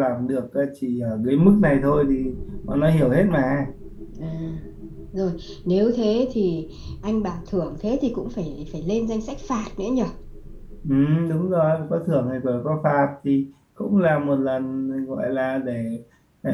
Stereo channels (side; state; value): both; identical; correlation 1.00